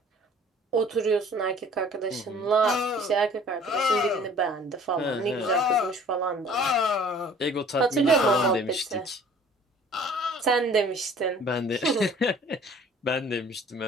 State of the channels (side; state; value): both; normal; correlation 0.51